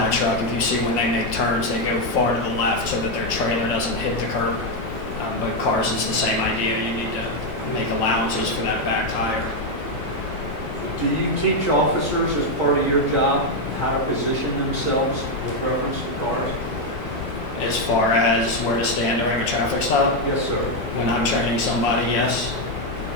If you see when they make turns, they go far to the left so that their trailer doesn't hit the curb. But cars, it's the same idea. You need to make allowances for that back tire. Do you teach officers as part of your job how to position themselves with reference to cars? As far as where to stand during a traffic stop? Yes, sir. When I'm training somebody, yes.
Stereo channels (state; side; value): normal; both; correlation 0.03